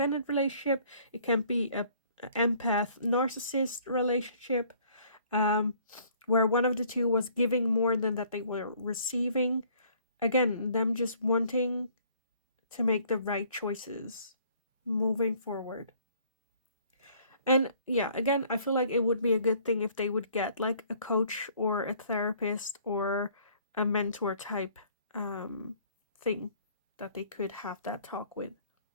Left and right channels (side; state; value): both; inverted; correlation -0.58